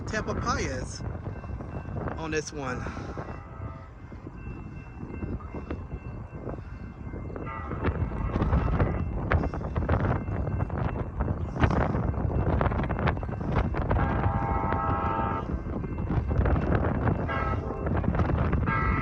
Tamalpais on this one.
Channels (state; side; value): identical; both; correlation 1.00